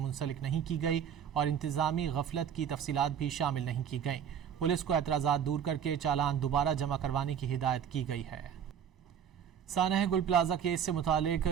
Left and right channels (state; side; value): quieter; left; 8.4 dB